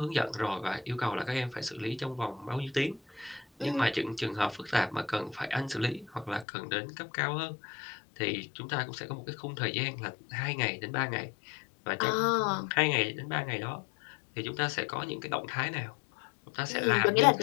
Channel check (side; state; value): right; drops out; at 6.5 s